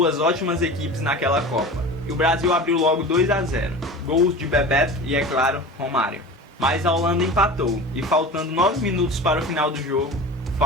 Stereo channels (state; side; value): normal; both; correlation 0.34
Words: ótimas equipes naquela Copa. E o Brasil abriu logo 2-0, gols de Bebeto e, é claro, Romário. Mas a Holanda empatou e, faltando 9 minutos para o final do jogo,